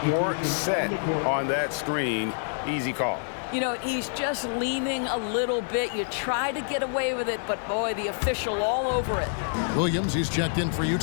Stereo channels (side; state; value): right; silent; 60 dB below the other